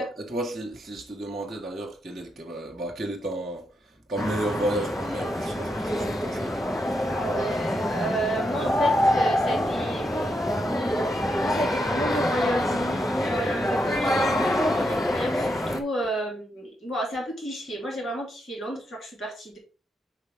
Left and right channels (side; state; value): both; normal; correlation 0.82